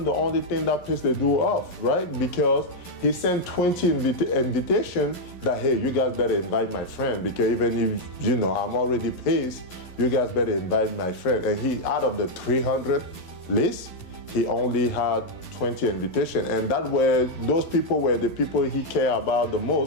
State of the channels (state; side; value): late; right; 11 ms